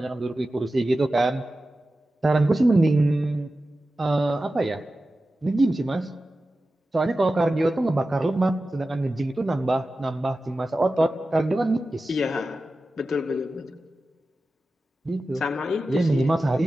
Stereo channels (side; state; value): both; normal; correlation 0.94